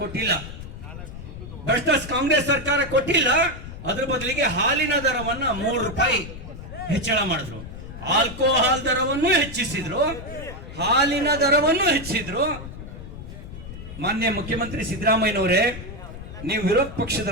ಕೊಟ್ಟಿಲ್ಲ. ಅದ್ರ ಬದಲಿಗೆ ಹಾಲಿನ ದರವನ್ನ 3 ರೂಪಾಯಿ ಹೆಚ್ಚಳ ಮಾಡಿದ್ರು. ಆಲ್ಕೋಹಾಲ್ ದರವನ್ನು ಹೆಚ್ಚಿಸಿದ್ರು, ಹಾಲಿನ ದರವನ್ನು ಹೆಚ್ಚಿದ್ರು. ಮಾನ್ಯ ಮುಖ್ಯಮಂತ್ರಿ ಸಿದ್ದರಾಮಯ್ಯನವರೇ, ನೀವು ವಿರೋಧ ಪಕ್ಷದ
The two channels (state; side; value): noise; left; rumble, 12 dB below the sound